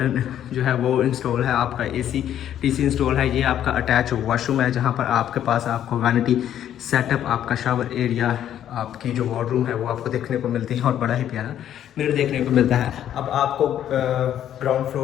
जो है वो इंस्टॉल है, आपका AC/DC इंस्टॉल है। ये आपका अटैच वॉशरूम है जहाँ पर आपके पास आपको वैनिटी सेटअप, आपका शावर एरिया, आपकी जो वार्डरूम है वो आपको देखने को मिलती है और बड़ा ही प्यारा मिरर देखने को मिलता है। अब आपको ग्राउंड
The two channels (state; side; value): quieter; right; 10.7 dB